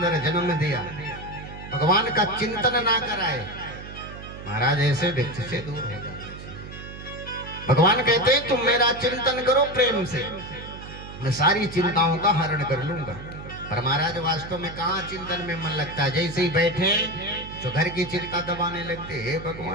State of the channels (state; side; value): noise; right; hum, 12 dB below the sound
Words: जन्म दिया, भगवान का चिंतन ना कराए, महाराज ऐसे व्यक्ति से दूर हो जाए। भगवान कहते हैं तुम मेरा चिंतन करो प्रेम से, मैं सारी चिंताओं का हरण कर लूंगा। पर महाराज वास्तव में कहाँ चिंतन में मन लगता है। जैसे ही बैठे तो घर की चिंता दबाने लगते, हे